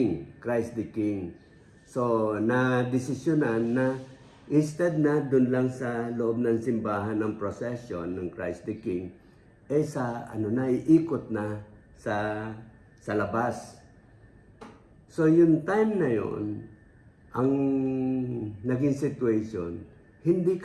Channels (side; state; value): both; identical; correlation 1.00